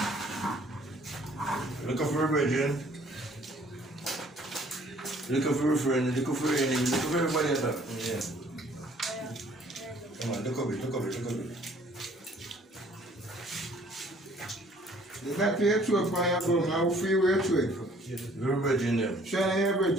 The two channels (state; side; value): normal; both; correlation 0.57